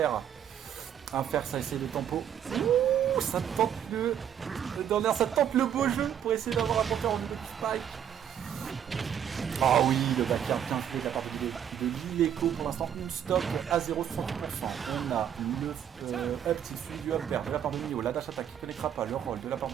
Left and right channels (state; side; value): quieter; left; 9.3 dB